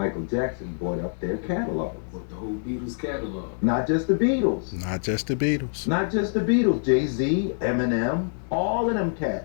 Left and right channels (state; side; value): silent; right; digital silence